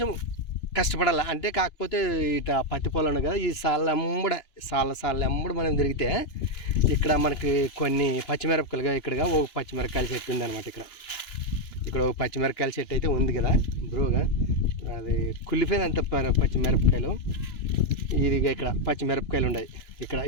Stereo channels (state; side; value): late; right; 2.9 ms